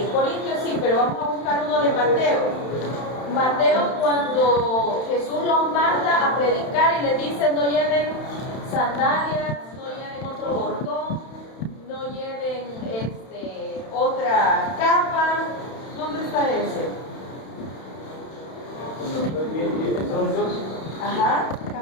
Corintios sí, pero vamos a buscar uno de Mateo. Mateo, cuando Jesús los manda a predicar y les dice no lleven sandalias, no lleven otro bordón, no lleven otra capa. ¿Dónde está ese? Ajá.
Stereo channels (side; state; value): right; late; 31 ms